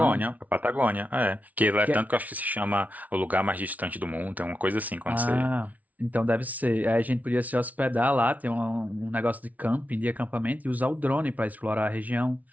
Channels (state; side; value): late; left; 0.072 ms